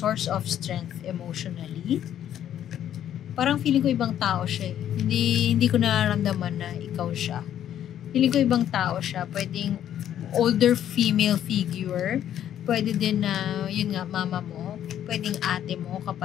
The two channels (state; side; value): quieter; right; 10.6 dB